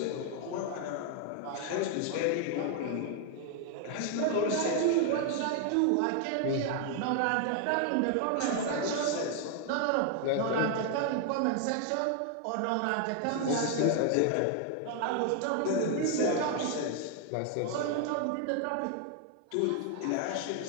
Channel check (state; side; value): different; both; correlation 0.00